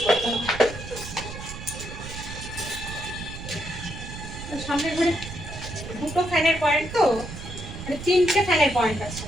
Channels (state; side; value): noise; right; rumble, 10 dB below the sound